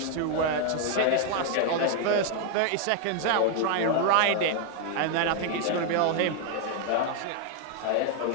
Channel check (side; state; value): both; different; correlation 0.00